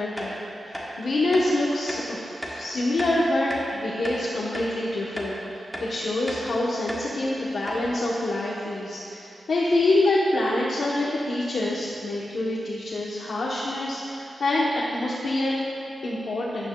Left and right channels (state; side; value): normal; both; correlation 0.90